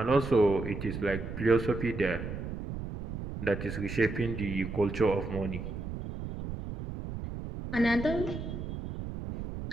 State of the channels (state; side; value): noise; right; rumble, 7 dB below the sound